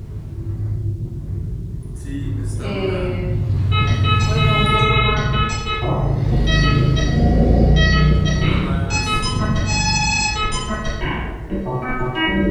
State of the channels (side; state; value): both; identical; correlation 1.00